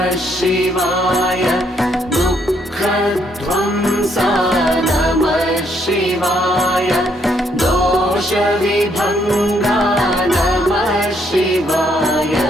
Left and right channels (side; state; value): both; normal; correlation 0.72